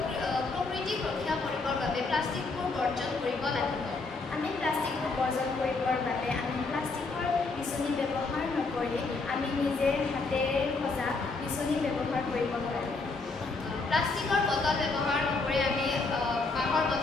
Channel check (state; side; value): quieter; right; 3.8 dB